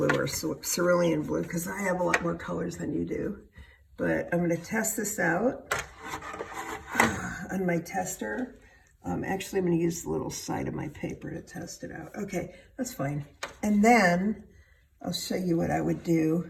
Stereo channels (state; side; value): identical; both; correlation 1.00